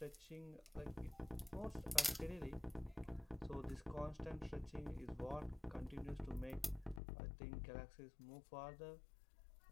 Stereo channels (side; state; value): right; drops out; at 7.0 s